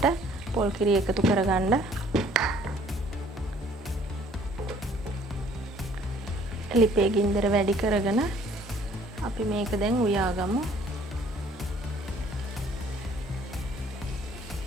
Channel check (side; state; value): both; normal; correlation 0.58